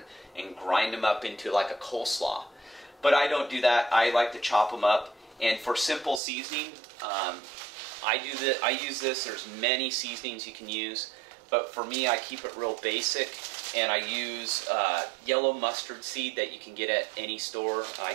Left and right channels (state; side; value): drops out; left; at 6.2 s